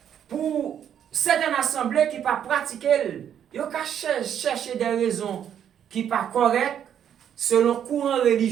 pour certaines assemblées qui ne pas pratiquer yo ka chercher des raisons qui pas correctes selon courant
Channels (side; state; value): left; quieter; 9.3 dB